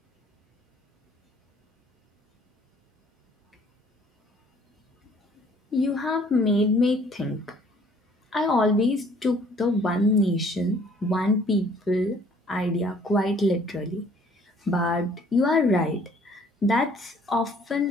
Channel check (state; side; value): normal; both; correlation 0.58